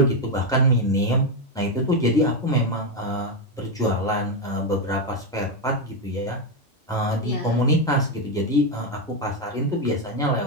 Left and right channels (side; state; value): both; normal; correlation 0.06